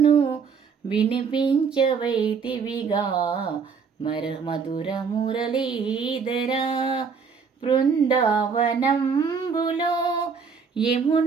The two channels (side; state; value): left; quieter; 5.8 dB